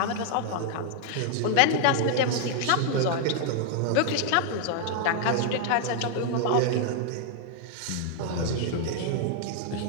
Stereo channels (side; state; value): both; different; correlation 0.00